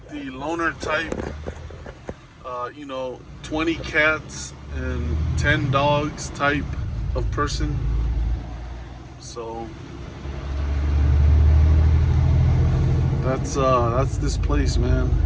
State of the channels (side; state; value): both; identical; correlation 1.00